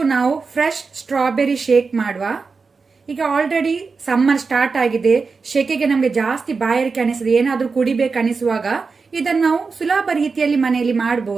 ನಾವು fresh strawberry shake ಮಾಡುವ. ಈಗ ಆಲ್ರೆಡಿ ಸಮ್ಮರ್ ಸ್ಟಾರ್ಟ್ ಆಗಿದೆ, ಶೆಕೆಗೆ ನಮಗೆ ಜಾಸ್ತಿ ಬಾಯಾರಿಕೆ ಅನಿಸ್ತದೆ, ಏನಾದರೂ ಕುಡಿಬೇಕು ಅನಿಸುವಾಗ ಇದನ್ನು ನಾವು ಸುಲಭ ರೀತಿಯಲ್ಲಿ ಮನೆಯಲ್ಲಿ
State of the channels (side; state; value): left; quieter; 4.7 dB